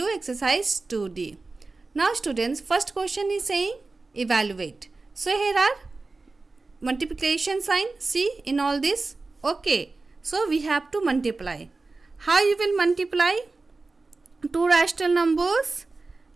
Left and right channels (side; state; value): left; quieter; 3.6 dB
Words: exercise 2D. Now students, first question is saying evaluate. So here are multiplication sign, see in all this. Okay, so we have to multiply. How you will multiply two rational numbers?